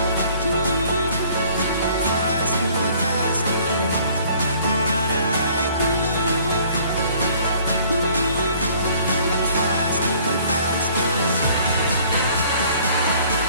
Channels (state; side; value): inverted; both; correlation -0.56